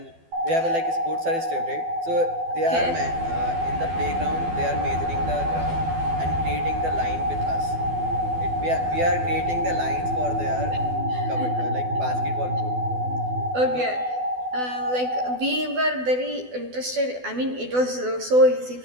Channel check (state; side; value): late; left; 12 ms